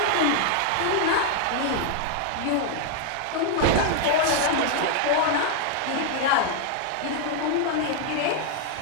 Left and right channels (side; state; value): both; different; correlation 0.00